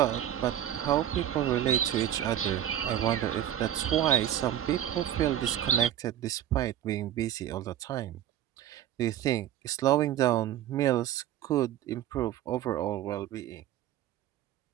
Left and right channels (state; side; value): quieter; left; 11.5 dB